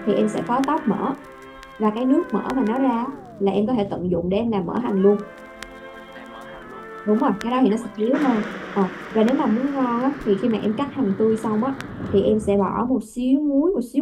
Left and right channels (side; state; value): both; identical; correlation 1.00